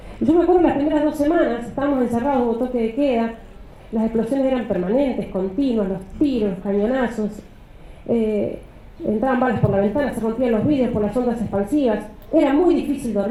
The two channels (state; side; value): identical; both; correlation 1.00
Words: Yo me acuerdo las primeras 2 semanas, estábamos encerrados, hubo toque de queda, las explosiones eran permanentes, continuas, los tiros, los cañonazos, entraban balas por la ventana, se rompían los vidrios por las ondas expansivas. Era muy difícil